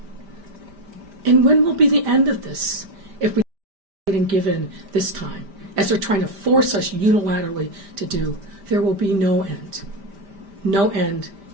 And when will be the end of this if we didn't give in this time, as they're trying to force us unilaterally to do? There will be no end. No end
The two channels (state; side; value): late; left; 5.1 ms